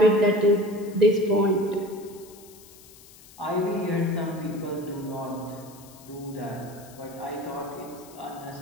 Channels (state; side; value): noise; left; hiss, 22 dB below the sound